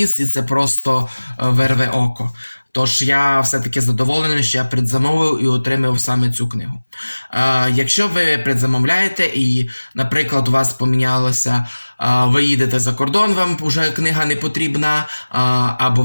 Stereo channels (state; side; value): inverted; both; correlation -1.00